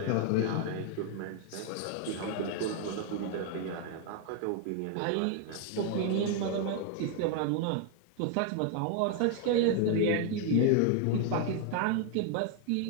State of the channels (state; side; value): different; both; correlation 0.00